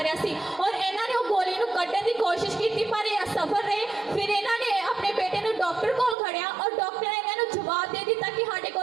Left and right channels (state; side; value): drops out; left; at 6.2 s